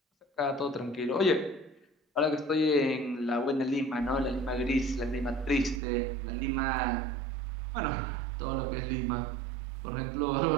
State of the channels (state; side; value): drops out; left; at 5.8 s